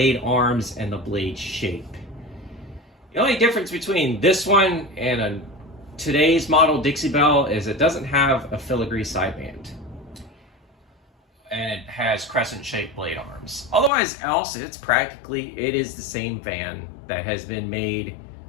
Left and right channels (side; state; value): right; drops out; at 13.9 s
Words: arms and the blade shape. The only difference between this one and today's model Dixie Belle is it doesn't have a filigree sideband, and it has crescent-shaped blade arms. Otherwise else, it is the same fan that has been made